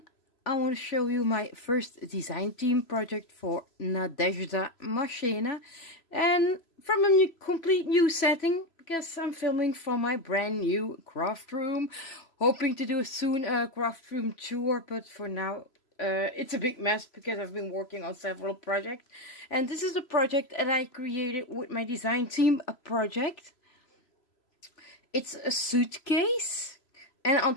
I want to show you my first design team project for Nadezhda Marchena, and from a complete new setting because I'm filming from my brand new craft room. Hoping to do soon a craft room tour, but for now it's a big mess because I've been working on several projects, and this is the project that I created with my design team, a project. It's a suitcase. And on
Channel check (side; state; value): right; late; 3.0 ms